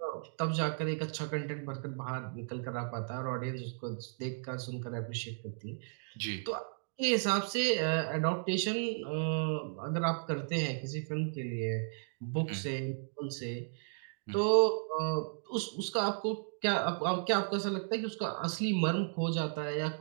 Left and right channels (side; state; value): left; silent; digital silence